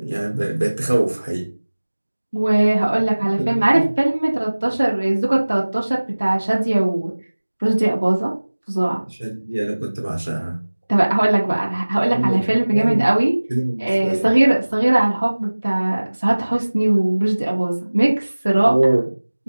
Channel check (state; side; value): inverted; both; correlation -1.00